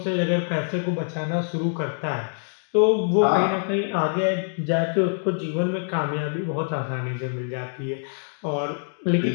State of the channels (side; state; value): right; silent; digital silence